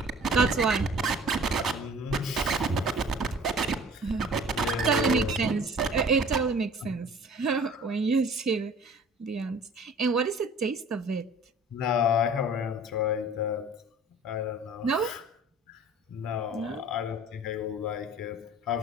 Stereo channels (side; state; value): both; normal; correlation 0.47